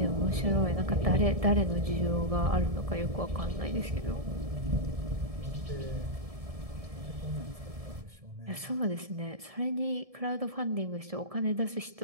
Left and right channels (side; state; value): left; late; 1.7 ms